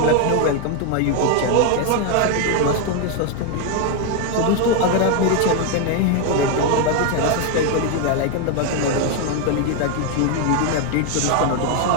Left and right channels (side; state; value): both; different; correlation 0.01